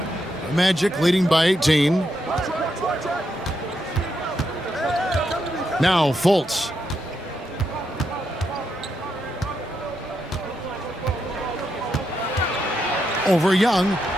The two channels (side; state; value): both; normal; correlation 0.82